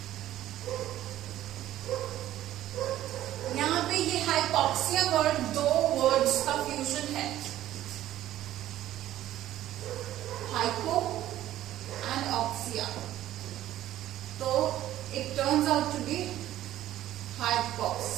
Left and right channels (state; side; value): quieter; left; 13.5 dB